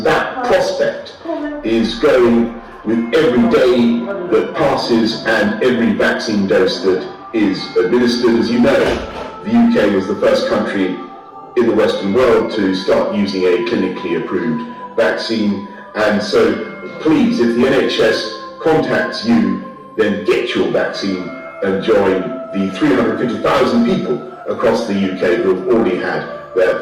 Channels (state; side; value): identical; both; correlation 1.00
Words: that prospect is growing with every day that passes and every vaccine dose that is administered. As you know, the UK was the first country in the Western world to start using a clinically approved vaccine. And so please, if the NHS contacts you, then get your vaccine and join the 350,000 people across the UK who have already had their